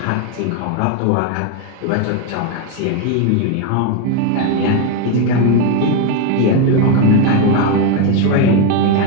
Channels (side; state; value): both; different; correlation 0.02